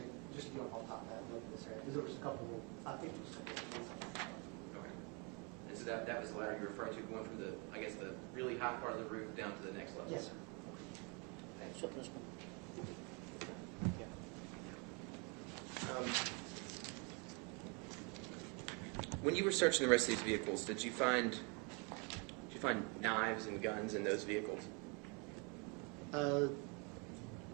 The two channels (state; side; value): quieter; left; 33.1 dB